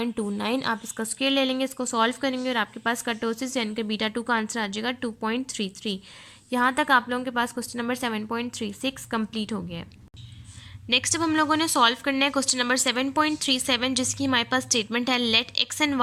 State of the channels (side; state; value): both; identical; correlation 1.00